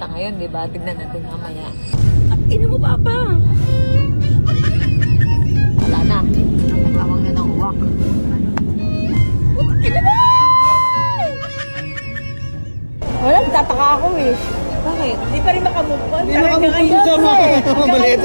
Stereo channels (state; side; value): inverted; both; correlation -1.00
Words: ngayon, di ba? Tignan natin mamaya. Ina mo, Papa! Wala na. Nagtawag na ng uwak. Ina mo! Wala, tataka ako eh. Bakit? Hindi pa rin makamove on. Hindi makamove on dito, maliit